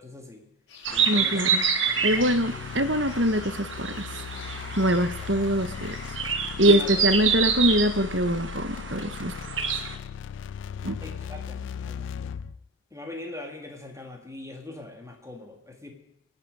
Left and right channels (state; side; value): normal; both; correlation 0.26